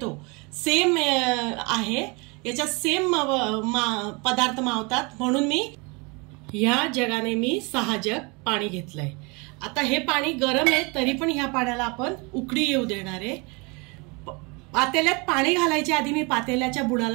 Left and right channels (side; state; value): left; quieter; 29.1 dB